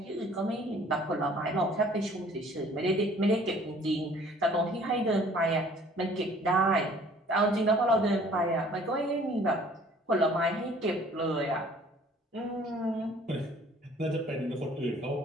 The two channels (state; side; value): normal; both; correlation 0.54